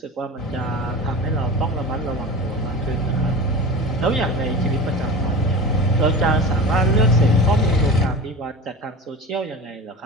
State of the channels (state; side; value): normal; both; correlation 0.32